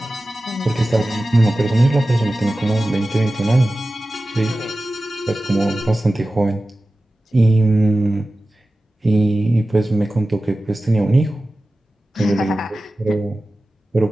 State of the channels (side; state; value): both; normal; correlation 0.95